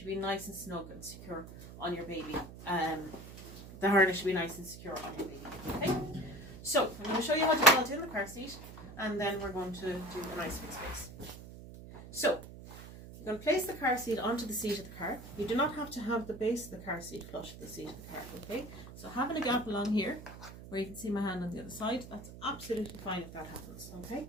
be nice and snug and secure on your baby. The harness should be nice and secure on your baby, okay? So I'm going to show you how to belt in the car seat, and then we're going to do a nice fixed base. So you're going to place the car seat onto the seat of the car. You do not have to have the base of the car seat flush with the seat of the car, okay? So having a gap along here, where you can see my hand on the other side, that's absolutely fine if that happens, okay?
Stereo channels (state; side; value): noise; right; hum, 14 dB below the sound